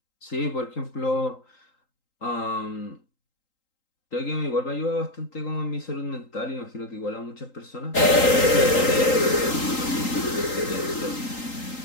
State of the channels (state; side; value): late; right; 3.8 ms